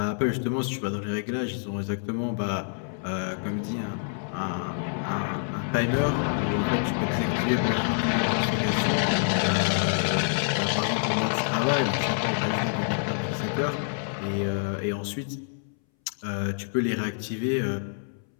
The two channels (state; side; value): silent; right; 60 dB below the other